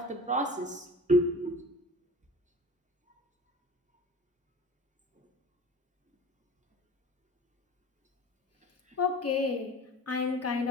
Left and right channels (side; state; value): both; normal; correlation 0.39